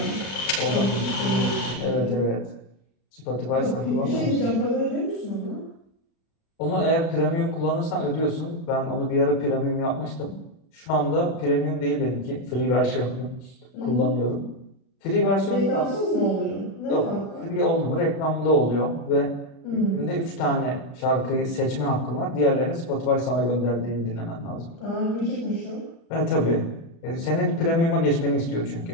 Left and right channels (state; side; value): late; right; 36 ms